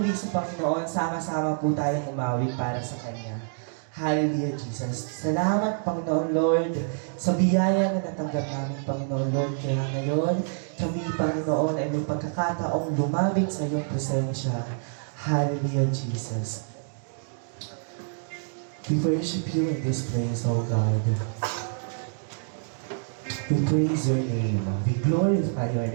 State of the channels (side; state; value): left; silent; digital silence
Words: sa Panginoon, sama-sama po tayong umawit para sa Kanya. Hallelujah, Jesus. Salamat, Panginoon Lord, sa biyaya na natanggap namin, Panginoon Lord. Kaya ngayon, kami, Panginoon, ay may pagkakataong lumabing sa iyong presensya. Hallelujah, Jesus. We worship you in this place, O God. We praise your name. We glorify your